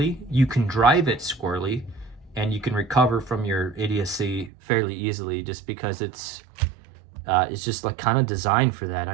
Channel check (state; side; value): drops out; left; at 4.5 s